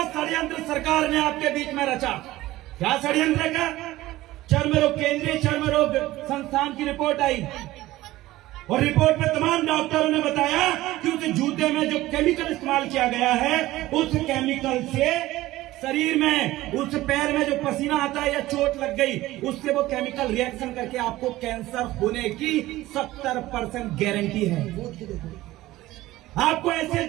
षड्यंत्र सरकार ने आपके बीच में रचा। क्या षड्यंत्र का? चर्म रोग, केंद्रीय चर्म रोग संस्थान की रिपोर्ट आई और रिपोर्ट में तमाम डॉक्टरों ने बताया कि उस जूते में जो केमिकल इस्तेमाल किया गया है, उस केमिकल से शरीर में, उस पैर में जो पसीना आता है या चोट लग गई, उससे वो केमिकल रिएक्शन करके आपको कैंसर होने की 70% गारंटी है। आपको ऐसे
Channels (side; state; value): left; quieter; 16.9 dB